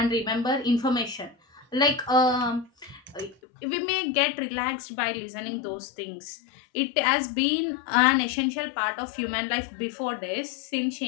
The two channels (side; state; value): right; drops out; at 3.4 s